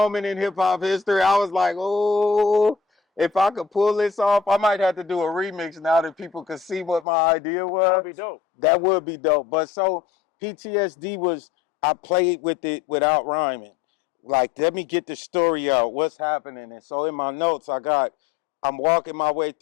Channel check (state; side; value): drops out; right; at 7.1 s